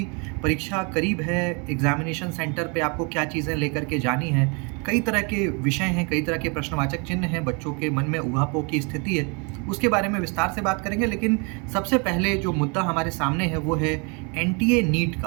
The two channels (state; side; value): quieter; left; 33.3 dB